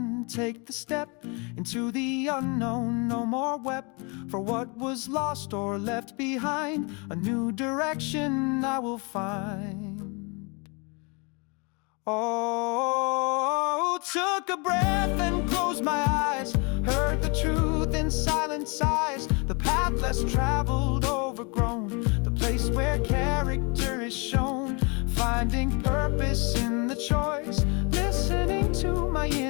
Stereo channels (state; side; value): quieter; right; 31.9 dB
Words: take the step into the unknown. No more wept for what was lost or left behind. A new direction I will find. Oh, took a breath and closed my eyes, heard the truth in silent sighs. The path less traveled, overgrown, the place where character is shown. Finding purpose in the choice, listening to my